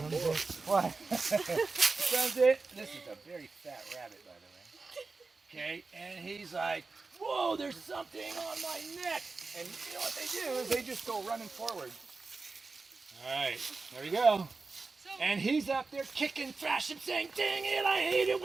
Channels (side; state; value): left; quieter; 4.0 dB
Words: boar. What? Sounds it. This is a very fat rabbit, by the way. Okay, and he's like, whoa, there's something on my neck. And you know what they do is they just go running forward. All right, there we go. And he's up there kicking, thrashing, saying, dang it, I hate it